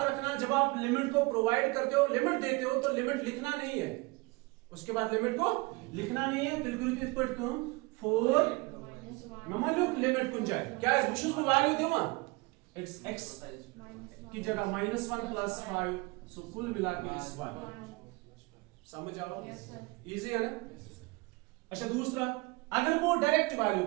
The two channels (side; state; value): left; quieter; 25.3 dB